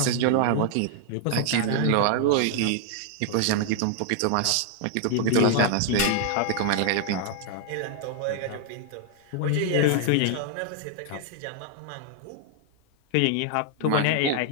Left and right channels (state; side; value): different; both; correlation 0.00